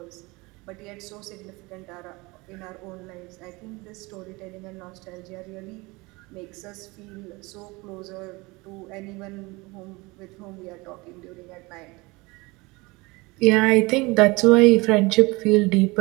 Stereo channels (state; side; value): quieter; left; 24.1 dB